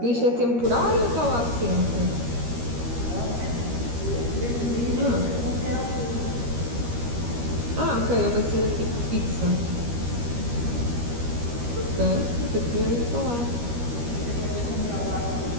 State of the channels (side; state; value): left; late; 13 ms